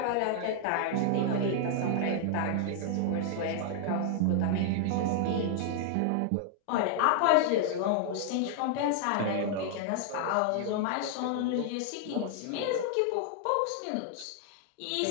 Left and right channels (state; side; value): different; both; correlation -0.01